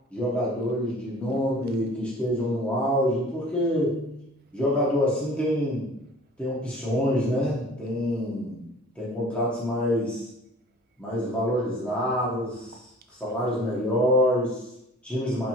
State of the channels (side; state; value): both; normal; correlation 0.47